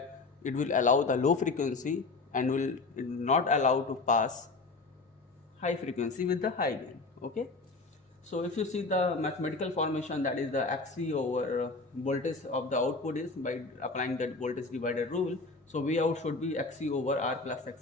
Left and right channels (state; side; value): quieter; right; 3.7 dB